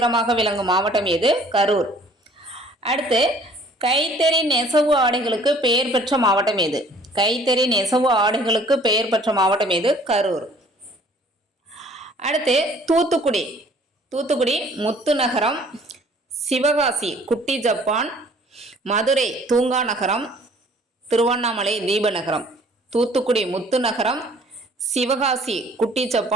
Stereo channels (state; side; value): normal; both; correlation 0.55